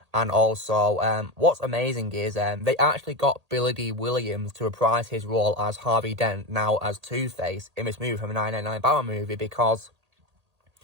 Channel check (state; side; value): late; left; 1.8 ms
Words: And also, what's amazing is they actually got Billy D. Williams to reprise his role as Harvey Dent, now as Two-Face, in this movie from the 1999 Batman movie, because